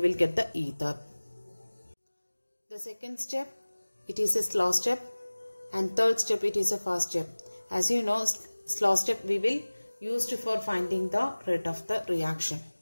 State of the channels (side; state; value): both; inverted; correlation -1.00